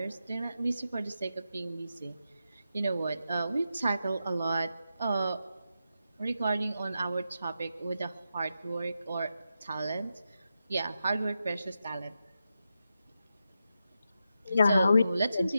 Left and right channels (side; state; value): both; inverted; correlation -0.87